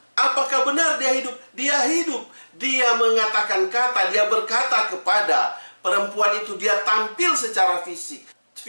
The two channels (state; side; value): inverted; both; correlation -1.00